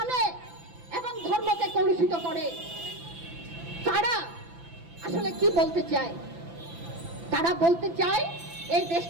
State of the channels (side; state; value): left; late; 5.9 ms